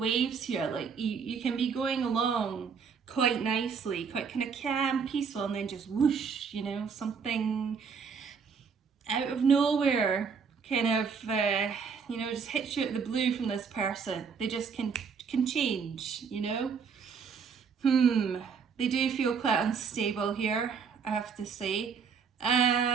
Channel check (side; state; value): left; quieter; 6.1 dB